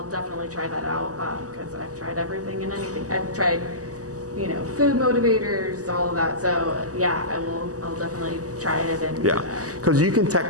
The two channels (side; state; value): left; late; 0.67 ms